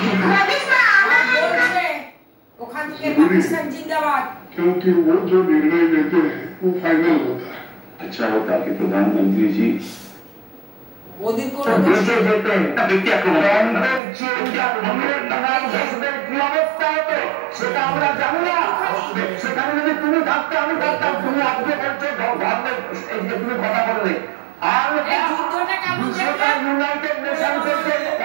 ওখান থেকে পাকিস্তান জিন্দাবাদ। क्योंकि वो जो निर्णय लेते हैं वो फाइनल होता है। अच्छा होता कि प्रधानमंत्री जी मोदी को ব্যক্তি সেটা আমরা জানি না। সেখানে যদি তুমি থাকতে আমি থাকতাম, তুমি আজকে বলছো এই যে তুমি কথা বললে আর ইউনাইটেড নেশনসের যে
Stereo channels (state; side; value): drops out; left; at 14.0 s